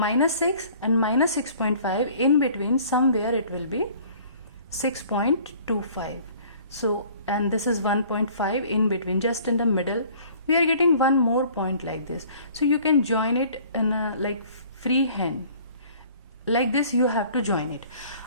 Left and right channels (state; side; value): inverted; both; correlation -0.52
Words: 6 and minus 6.5, in between somewhere it will be 6.25. So, and this is 1.5 in between, just in the middle. We are getting one more point like this. So you can join it in a like free hand. Like this you have to join it.